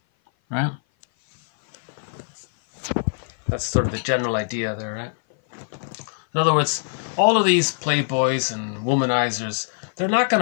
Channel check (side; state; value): right; silent; 57 dB below the other